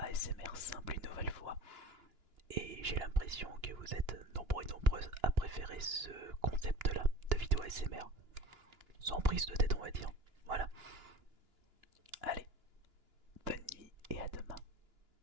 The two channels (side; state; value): left; late; 2.9 ms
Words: simple une nouvelle fois. Et j'ai l'impression que vous êtes nombreux et nombreuses à préférer ce concept là de vidéo ASMR. Sans prise de tête on va dire. Voilà.